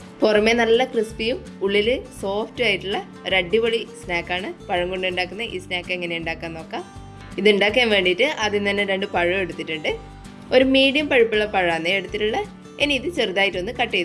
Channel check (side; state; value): both; identical; correlation 1.00